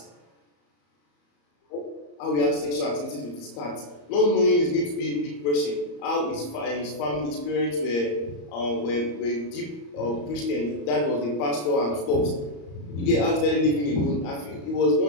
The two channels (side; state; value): right; late; 34 ms